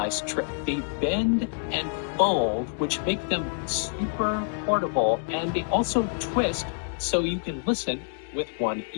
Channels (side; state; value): right; silent; digital silence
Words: trick. They bend and fold, which make them super portable, and they also twist so you can listen with one